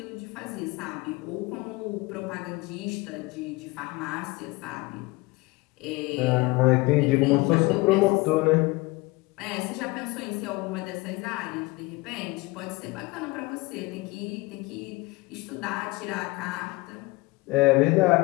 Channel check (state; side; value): quieter; right; 22.8 dB